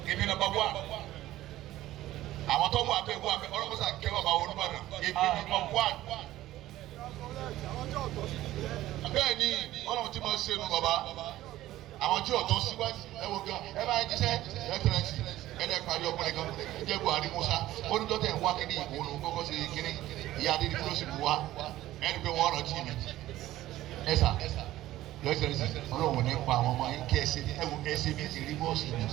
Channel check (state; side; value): quieter; left; 15.0 dB